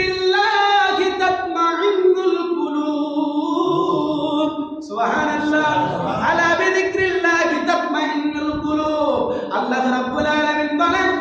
তাতমাইন্নুল কুলুব। সুবহানাল্লাহ। আলা বিযিকরিল্লাহি তাতমাইন্নুল কুলুব। আল্লাহ রাব্বুল আলামিন বলেন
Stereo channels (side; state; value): both; identical; correlation 1.00